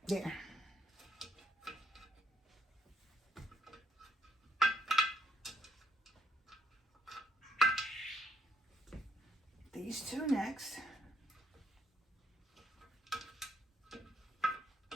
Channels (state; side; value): normal; both; correlation 0.72